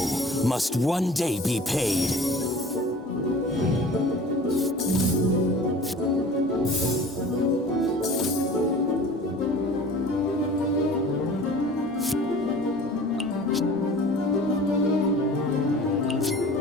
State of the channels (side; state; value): both; normal; correlation 0.43